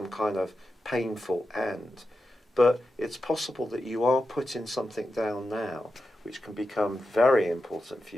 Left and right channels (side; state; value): both; normal; correlation 0.89